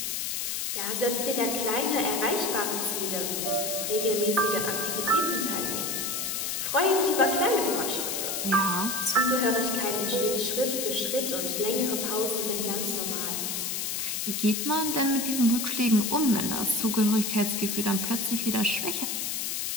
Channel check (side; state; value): left; noise; hiss, 1 dB below the sound